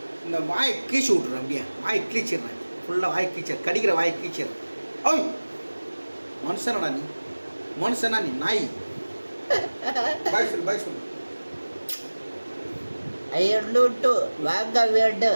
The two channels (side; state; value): both; inverted; correlation -1.00